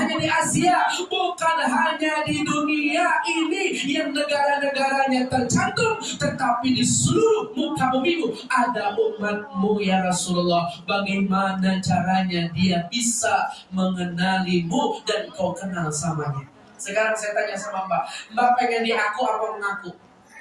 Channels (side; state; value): both; identical; correlation 1.00